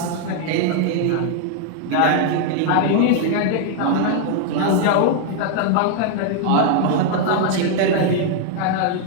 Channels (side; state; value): both; different; correlation 0.00